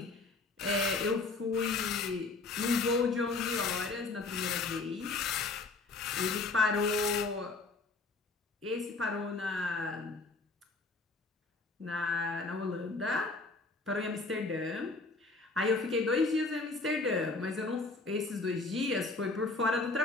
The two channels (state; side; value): quieter; right; 3.6 dB